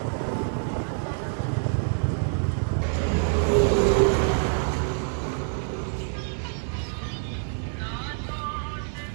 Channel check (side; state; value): left; silent; 61 dB below the other